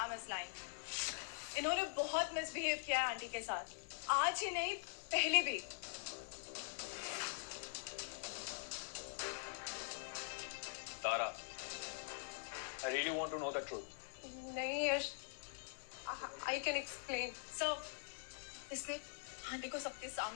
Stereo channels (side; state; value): right; silent; digital silence